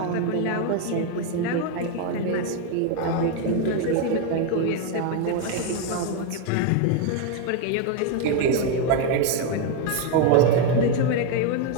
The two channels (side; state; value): both; different; correlation 0.01